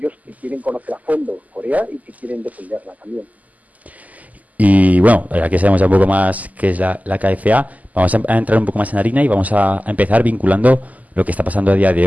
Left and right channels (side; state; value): left; late; 0.077 ms